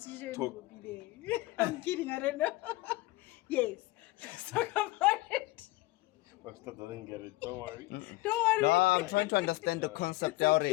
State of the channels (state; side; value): quieter; right; 19.6 dB